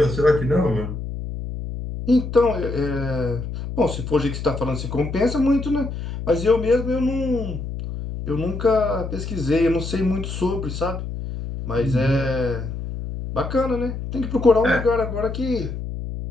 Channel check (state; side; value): noise; left; hum, 6 dB below the sound